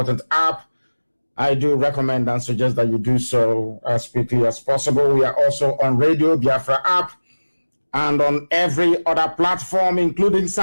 app, I do recommend and suggest that you do so as quickly as possible. We are also on Radio Biafra app and on every other platform, including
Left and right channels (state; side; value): inverted; both; correlation -1.00